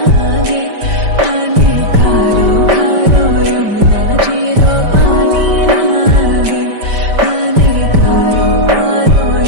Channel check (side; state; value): left; late; 5.1 ms